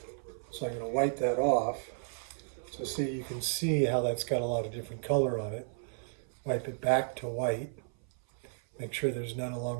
So I'm going to wipe that off. So see, you can see how that's got a lot of different color on it. Wipe it back to white. Make sure there's none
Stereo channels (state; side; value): silent; left; 56 dB below the other